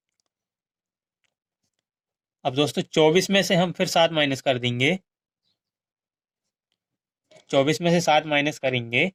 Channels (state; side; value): identical; both; correlation 1.00